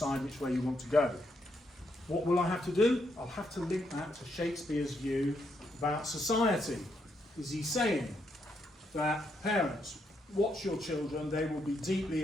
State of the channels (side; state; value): both; normal; correlation 0.78